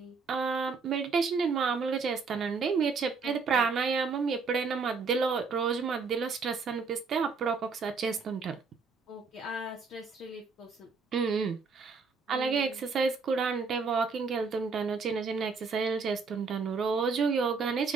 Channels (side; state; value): left; quieter; 4.8 dB